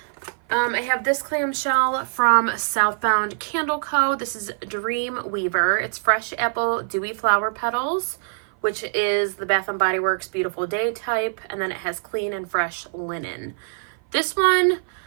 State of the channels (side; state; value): left; silent; 56 dB below the other